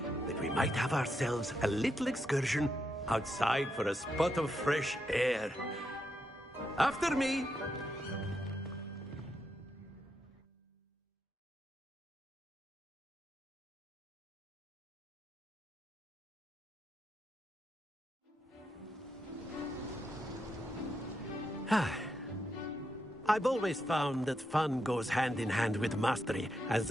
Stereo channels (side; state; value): both; normal; correlation 0.82